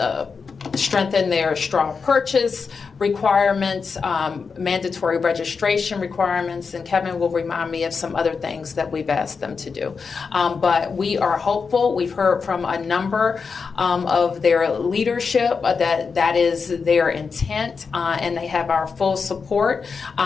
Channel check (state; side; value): quieter; right; 5.3 dB